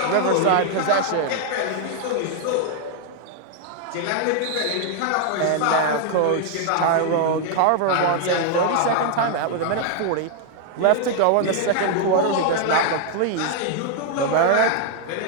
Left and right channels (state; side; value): different; both; correlation 0.00